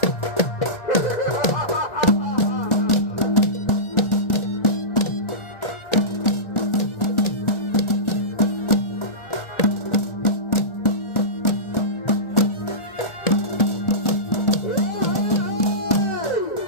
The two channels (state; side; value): late; right; 1.4 ms